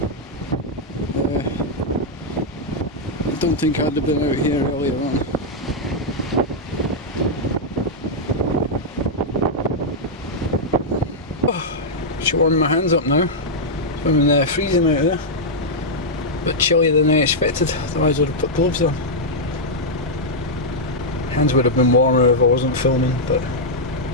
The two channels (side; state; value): both; normal; correlation -0.05